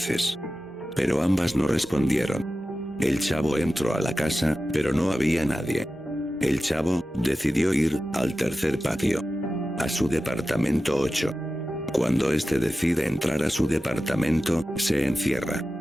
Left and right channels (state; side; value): normal; both; correlation 0.94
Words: Pero ambas no respondieron. El chavo entró a la casa, pero no había nadie. El chavo, decidió ir, al tercer patio. A su departamento 8. Cuando este decide entrar a su departamento, se encierra.